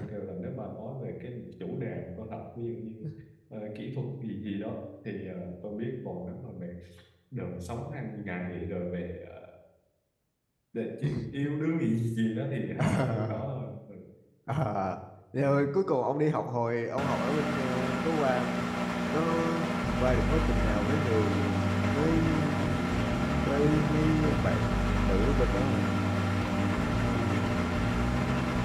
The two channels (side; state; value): both; identical; correlation 1.00